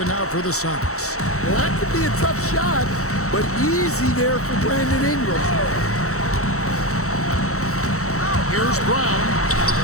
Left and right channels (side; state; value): right; late; 0.64 ms